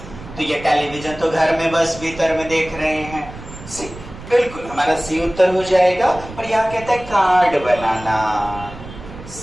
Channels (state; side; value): noise; right; rumble, 15 dB below the sound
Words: तो ये टेलीविजन तो घर में बस भीतर में देख रहे हैं। बिल्कुल हमारा सी उत्तर हो जाएगा। और यहाँ कहता है कार्ड बनाना,